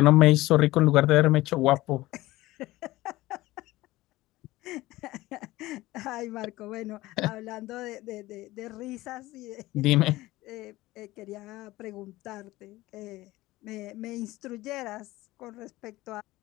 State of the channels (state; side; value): quieter; right; 18.1 dB